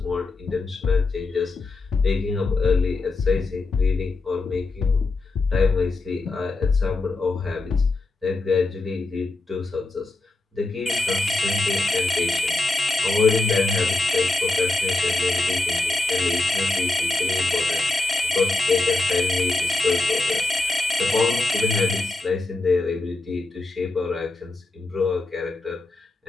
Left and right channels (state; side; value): quieter; right; 3.2 dB